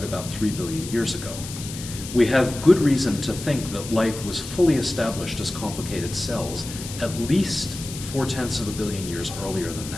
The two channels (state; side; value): noise; left; hiss, 11 dB below the sound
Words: about 3 billion years ago. We have good reason to think that life was fully established as complicated cells at least 4/10 of a billion years earlier than